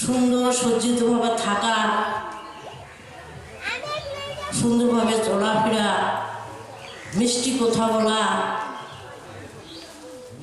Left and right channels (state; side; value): identical; both; correlation 1.00